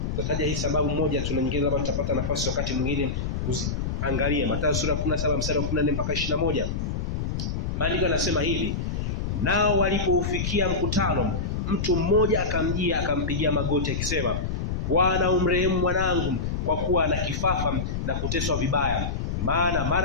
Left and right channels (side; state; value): left; noise; rumble, 2 dB below the sound